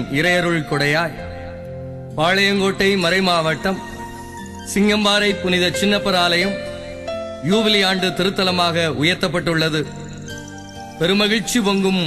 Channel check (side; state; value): both; identical; correlation 1.00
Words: இறையருள் கொடையாய் பாளையங்கோட்டை மறைமாவட்டம் சிங்கம்பாறை புனித சின்னப்பர் ஆலயம் யூபிலி ஆண்டு திருத்தலமாக உயர்த்தப்பட்டுள்ளது. பெருமகிழ்ச்சி பொங்கும்